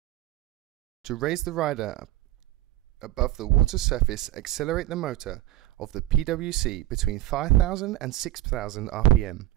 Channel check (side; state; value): left; quieter; 15.4 dB